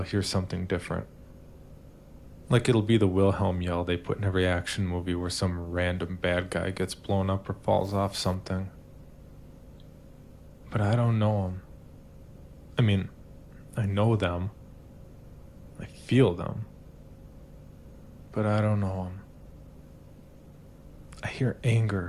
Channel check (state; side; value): identical; both; correlation 1.00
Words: hear something different. Like it'll be the Wilhelm yell they put in every action movie where some random bad guy gets blown up or falls off something. But I don't know them. I mean, I know them. I feel them. But I don't know them. I hear